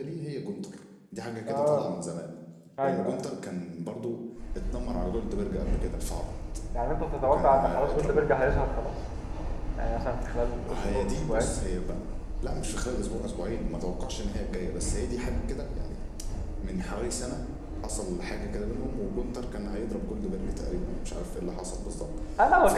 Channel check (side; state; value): both; identical; correlation 1.00